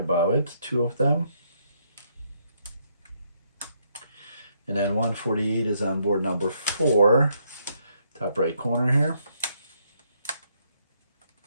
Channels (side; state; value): both; inverted; correlation -0.74